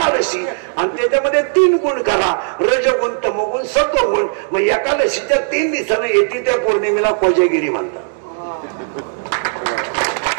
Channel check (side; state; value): left; silent; 66 dB below the other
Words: आणि त्याच्यामध्ये 3 गुण करा, रजगुण, तमगुण, सत्वगुण. मग एकादशीच्या 3 दिवसानं येते त्या पौर्णिमेला कोजागिरी म्हणतात.